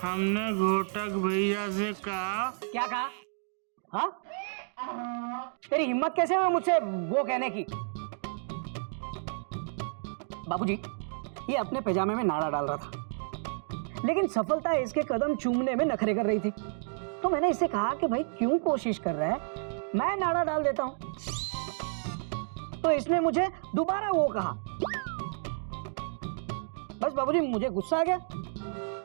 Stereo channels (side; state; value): left; silent; digital silence